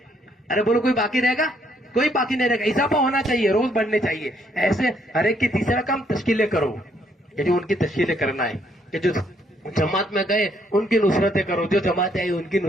ارے بولو کوئی باقی رہے گا؟ کوئی باقی نہیں رہے گا. اضافہ ہونا چاہیے، روز بڑھنے چاہیے. ایسے ہر ایک کی تیسرا کام تشکیلیں کرو، یہ جو ان کی تشکیلیں کرنا ہے. کہ جو جماعت میں گئے ان کی نصرتیں کرو، جو جماعت آئی ان کی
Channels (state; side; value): normal; both; correlation 0.70